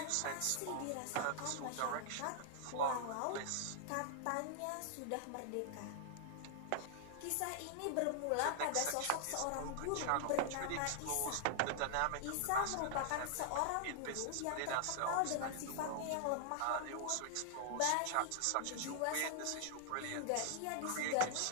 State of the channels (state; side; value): different; both; correlation -0.01